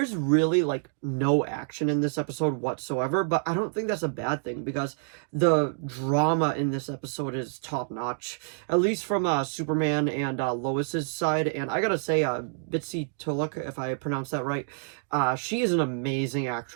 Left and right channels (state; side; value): silent; left; digital silence